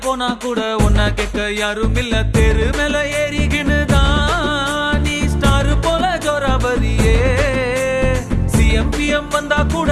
போனா கூட ஒன்ன கேட்க யாரும் இல்ல. தெரு மேல ஏறிக்கினுதான் நீ ஸ்டார் போல ஜோராபரியே. சிஎம்பிஎம் வந்தா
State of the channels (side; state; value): both; identical; correlation 1.00